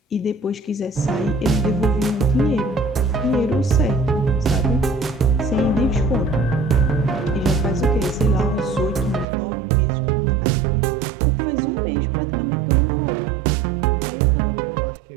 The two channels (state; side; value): drops out; left; at 9.2 s